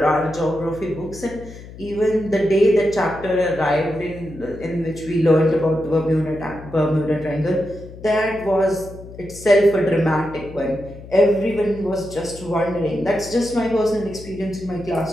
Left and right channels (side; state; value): left; noise; hum, 16 dB below the sound